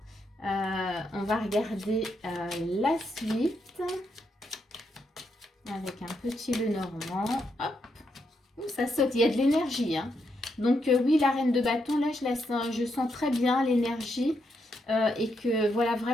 On va regarder la suite. Avec un petit Lenormand. Hop. Ouh, ça saute. Il y a de l'énergie. Hein. Donc, oui, la reine de bâton, là, je sens très bien l'énergie. Et que, voilà,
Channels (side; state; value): both; normal; correlation 0.80